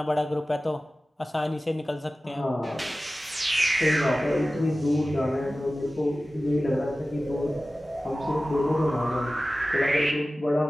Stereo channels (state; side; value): normal; both; correlation 0.96